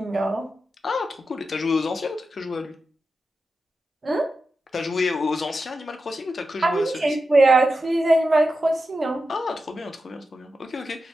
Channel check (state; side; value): normal; both; correlation 0.90